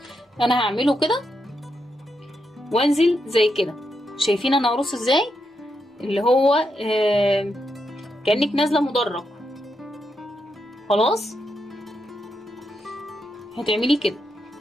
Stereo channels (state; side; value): normal; both; correlation 0.83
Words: انا هعمله كده وانزل زي كده. شايفين انا هرص ازاي؟ اللي هو كأنك نازله مدرج. خلاص. هتعملي كده.